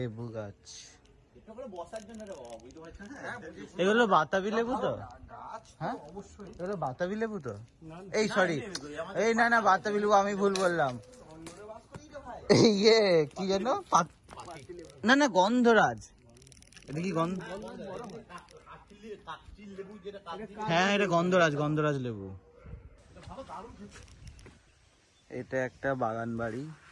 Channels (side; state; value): both; identical; correlation 1.00